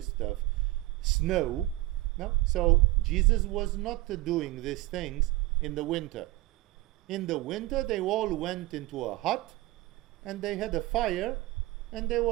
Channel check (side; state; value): left; quieter; 18.8 dB